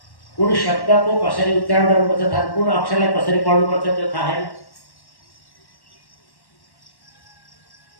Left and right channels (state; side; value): late; right; 1.1 ms